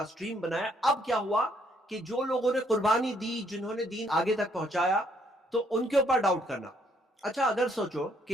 سٹریم بنایا. اب کیا ہوا کہ جو لوگوں نے قربانی دی, جنہوں نے دین آگے تک پہنچایا, تو ان کے اوپر ڈاؤٹ کرنا. اچھا اگر سوچو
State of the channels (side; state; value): both; normal; correlation 0.69